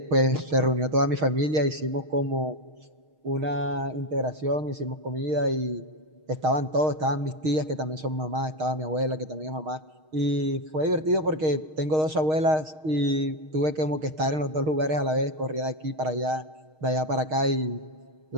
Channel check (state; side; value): late; left; 6.4 ms